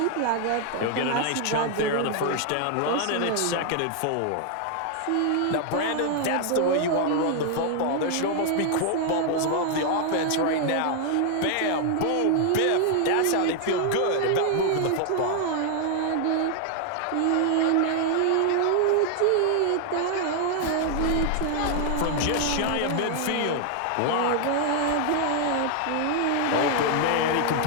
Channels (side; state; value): both; different; correlation 0.00